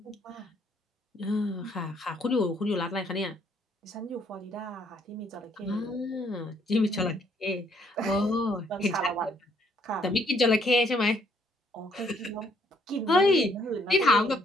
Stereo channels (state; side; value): normal; both; correlation 0.67